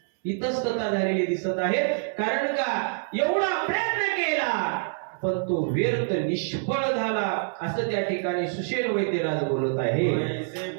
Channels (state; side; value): silent; left; 59 dB below the other